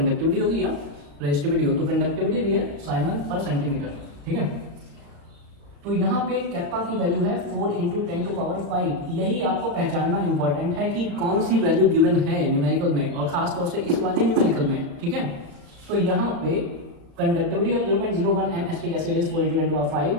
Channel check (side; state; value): left; late; 35 ms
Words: होगी या रेजिस्टिविटी होगी। तो कंडक्टिविटी दी है साइमन पर सेंटीमीटर, ठीक है। तो यहाँ पे कैप्पा की वैल्यू है 4 × 10⁵। यही आपको पहचानना इंपॉर्टेंट है कि कौन सी वैल्यू गिवन है न्यूमेरिकल में, और खास तौर से इस वाले न्यूमेरिकल में, ठीक है। तो यहाँ पे conductivity of 0.01 m acetic acid is 4 × 10⁵।